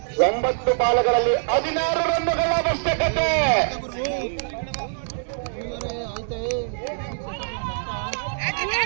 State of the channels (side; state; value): left; silent; digital silence